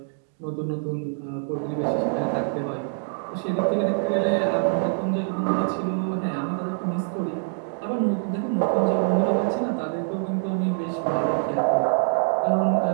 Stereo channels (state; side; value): silent; left; digital silence